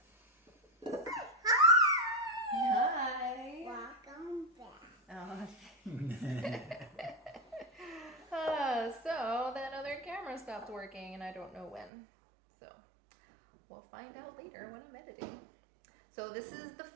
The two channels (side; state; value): left; drops out; at 11.9 s